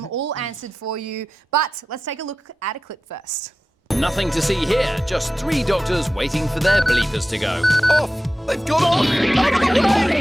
all answered for you. But let's take a look at a clip first. Nothing to see here, just 3 doctors waiting for their bleepers to go. Off! They've gone off! Out of the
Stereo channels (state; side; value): normal; both; correlation 0.93